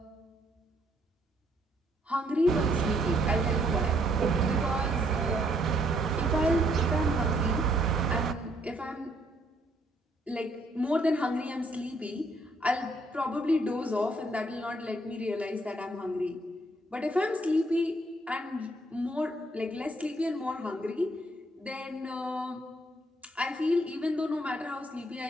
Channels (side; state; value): both; normal; correlation 0.69